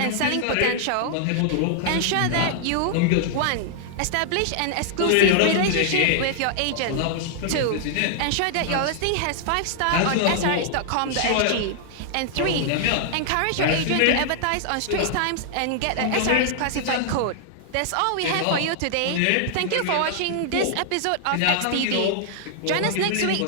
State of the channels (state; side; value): different; both; correlation -0.01